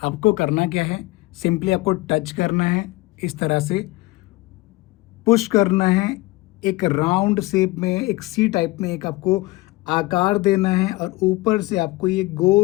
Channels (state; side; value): quieter; right; 20.8 dB